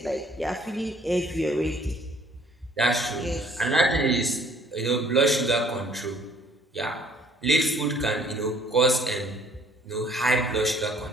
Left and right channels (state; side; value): normal; both; correlation 0.59